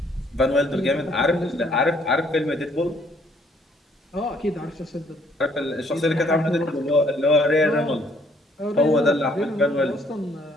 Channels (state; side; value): normal; both; correlation 0.65